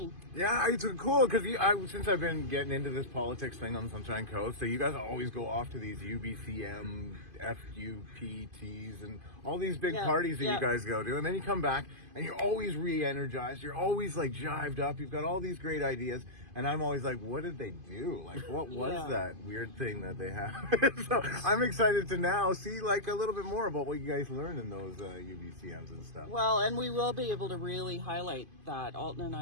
Yeah, it's cool because since I've been getting into this politics thing on Sunshine Coast, so you guys always go off to these UBCM, FUPTs, and all these big parties that you guys go to, and then you come back and you're always re-energized. You're always like jived up. You've got all these great ideas, and I'm always like, what did they do? Like, what was that weird thing that they had? So I'm excited to now see like a little bit more about what you guys learned in those UBCMs and stuff. Well, and we will be able to really highlight that. Alton and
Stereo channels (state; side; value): late; left; 2.5 ms